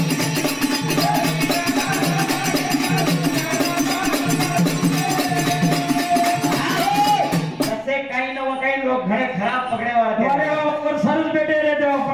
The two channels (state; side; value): identical; both; correlation 1.00